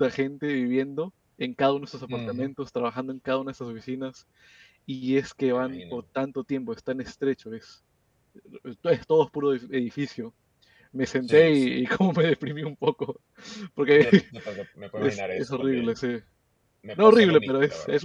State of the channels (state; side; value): identical; both; correlation 1.00